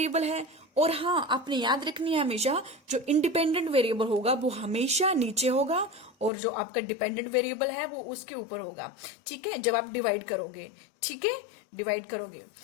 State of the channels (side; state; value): right; drops out; at 6.3 s